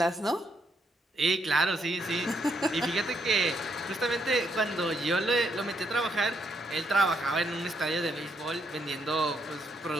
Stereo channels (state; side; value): normal; both; correlation 0.75